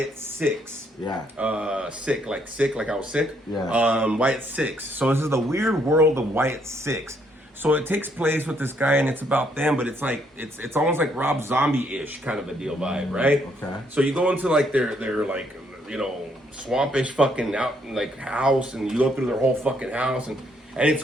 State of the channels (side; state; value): both; normal; correlation 0.71